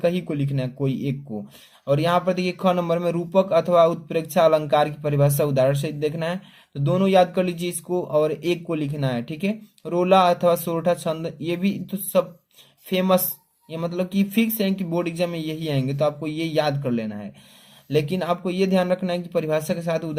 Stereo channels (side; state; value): both; identical; correlation 1.00